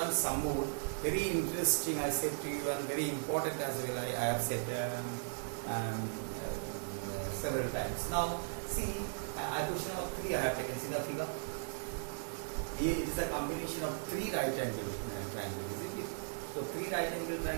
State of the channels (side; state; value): left; silent; digital silence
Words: some more. Very interesting, I said to you, and very important as well. I have said several times. Now see, a question of 3 I have taken. See the figure. Here it is a combination of 3 right angle triangles, isn't it? So 3 right angle